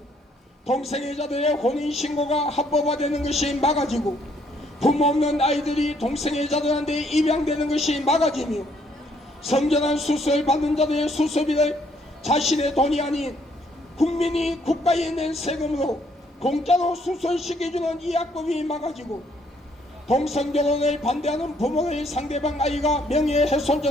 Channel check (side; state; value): both; normal; correlation 0.68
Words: 동성애자들의 혼인신고가 합법화되는 것이 막아지고 부모 없는 아이들이 동성애자들한테 입양되는 것이 막아지며 성전환 수술 받는 자들의 수술비를 자신의 돈이 아닌 국민이 국가에 낸 세금으로 공짜로 수술시켜주는 이 악법이 막아지고 동성결혼을 반대하는 부모를 상대방 아이가